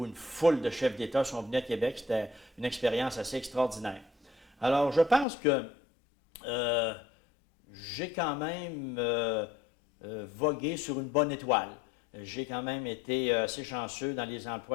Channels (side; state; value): right; drops out; at 5.2 s